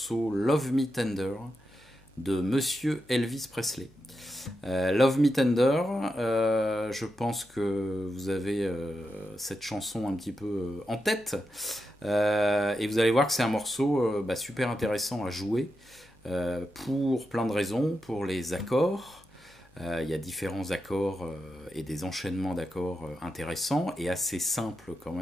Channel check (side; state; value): both; normal; correlation 0.87